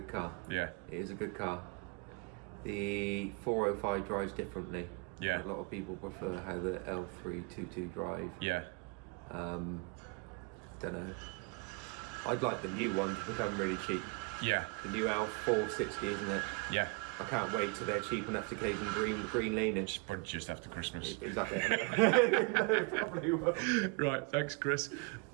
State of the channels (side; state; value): left; quieter; 30.7 dB